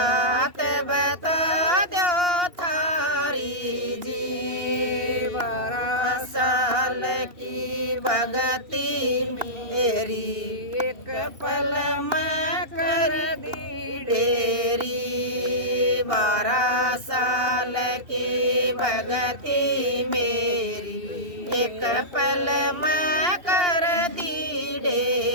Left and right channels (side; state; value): left; late; 2.8 ms